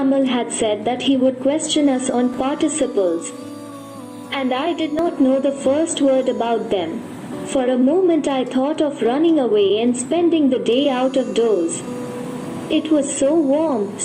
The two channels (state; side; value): identical; both; correlation 1.00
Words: had said that he would question us on participles. And I did not know the first word about them. For a moment I thought of running away and spending the day out of doors. It was so warm,